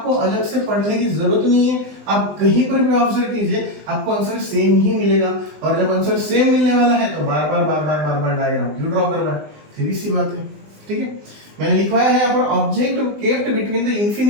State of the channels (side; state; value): left; late; 20 ms